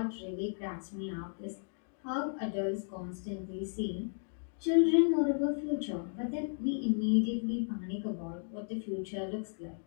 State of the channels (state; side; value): silent; right; digital silence